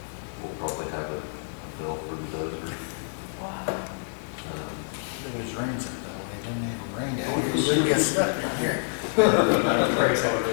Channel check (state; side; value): silent; right; 60 dB below the other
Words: we'll probably have a bill for the dozer. wow. It always rains up that way, it didn't ever rain down here, it wouldn't get stuck down here.